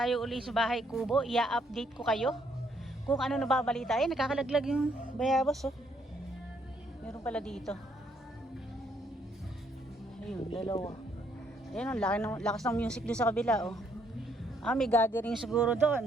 uli sa bahay kubo. I-update ko kayo kung ano nababalita. Ay, nakakalaglag yung bayabas, oh. Meron pala dito. Ayun, dalawa. Ayun, ang lakas ng music doon sa kabila, oh. May gathering siguro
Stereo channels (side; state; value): both; normal; correlation 0.70